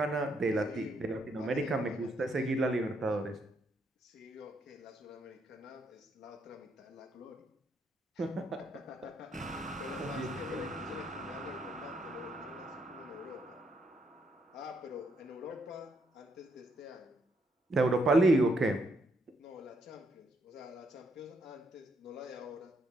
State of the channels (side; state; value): both; normal; correlation 0.74